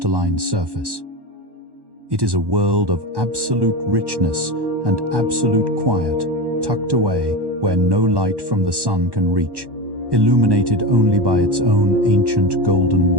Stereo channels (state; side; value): late; left; 1.1 ms